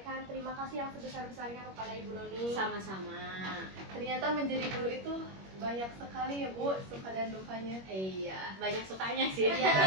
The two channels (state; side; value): late; left; 21 ms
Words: terima kasih yang sebesar-besarnya kepada Ibu Noni. Sama-sama. Ternyata menjadi guru itu banyak sekali ya Bu, suka dan dukanya. Iya, banyak sukanya sih. Iya.